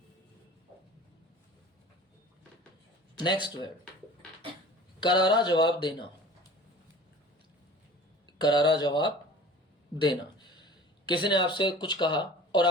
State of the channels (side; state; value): both; normal; correlation 0.42